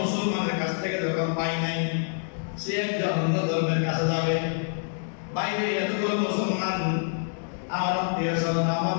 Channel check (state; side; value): silent; right; digital silence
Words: কাছ থেকে যখন পাই নাই, সে একজন অন্য ধর্মের কাছে যাবে। বাইরে এতগুলো মুসলমান আমার আত্মীয় স্বজন, আমার